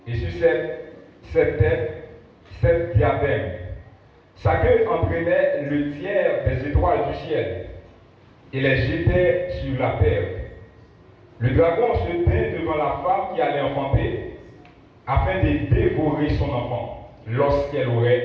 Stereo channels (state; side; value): identical; both; correlation 1.00